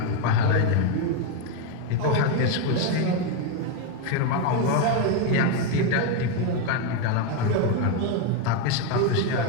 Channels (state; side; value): different; both; correlation 0.02